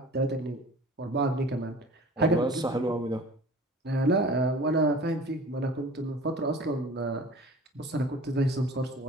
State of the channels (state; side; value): normal; both; correlation 0.43